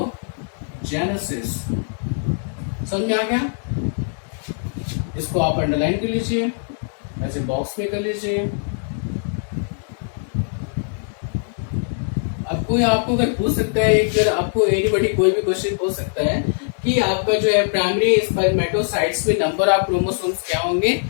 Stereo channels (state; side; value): silent; right; 64 dB below the other